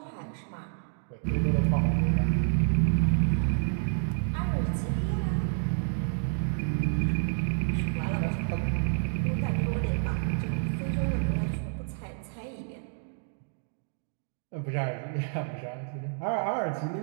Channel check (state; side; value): silent; left; digital silence